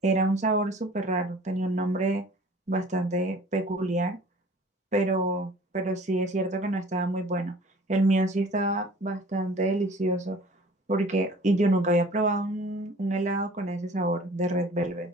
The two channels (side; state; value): both; normal; correlation 0.48